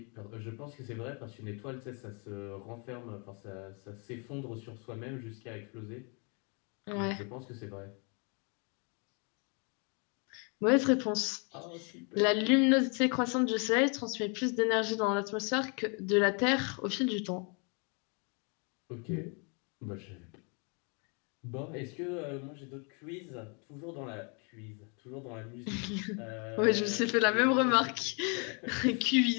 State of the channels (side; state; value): right; quieter; 35.9 dB